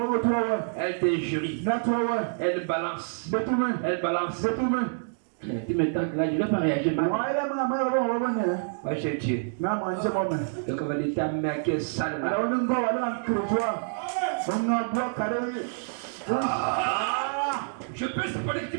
Elle t'injurie. Elle balance. Elle balance. Tu me tentes là, je ne vais pas réagir mal. Moi j'ai Dieu. Donc on va dire ta mère qui est sale là. Je peux supporter que tu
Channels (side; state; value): left; silent; digital silence